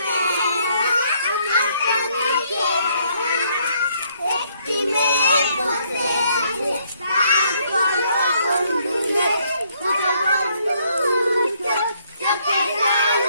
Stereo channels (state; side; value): inverted; both; correlation -0.69